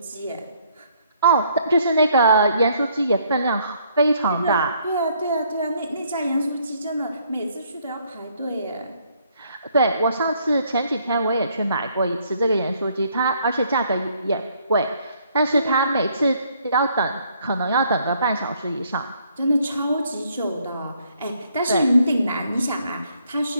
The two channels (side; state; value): both; inverted; correlation -0.67